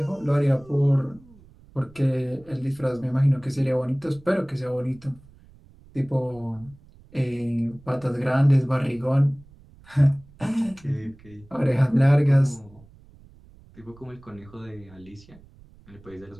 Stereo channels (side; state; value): right; noise; rumble, 25 dB below the sound